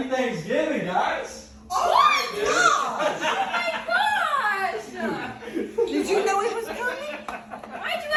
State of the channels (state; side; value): identical; both; correlation 1.00